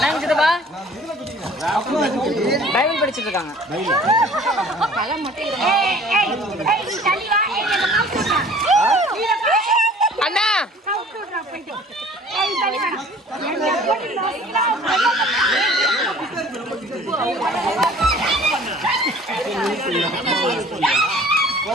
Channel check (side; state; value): both; normal; correlation 0.50